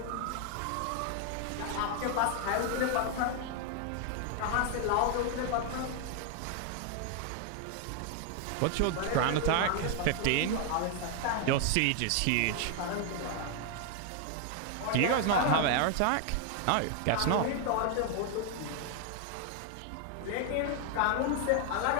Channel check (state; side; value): different; both; correlation 0.00